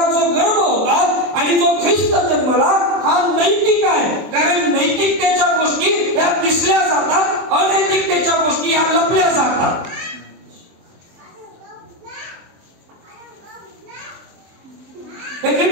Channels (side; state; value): left; late; 24 ms